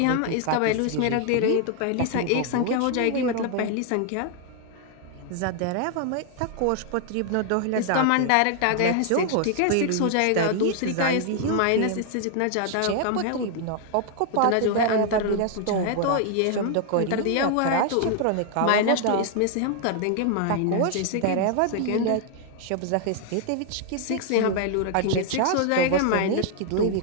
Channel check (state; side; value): different; both; correlation 0.00